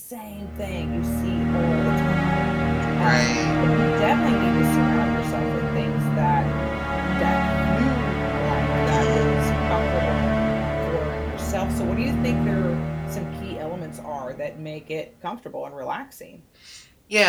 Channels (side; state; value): both; identical; correlation 1.00